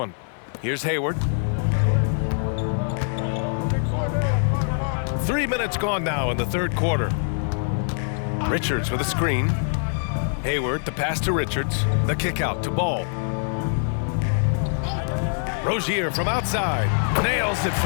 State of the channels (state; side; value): silent; right; digital silence